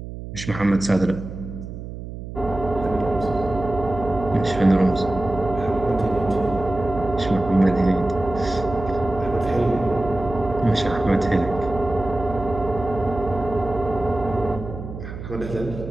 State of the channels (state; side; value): noise; right; hum, 10 dB below the sound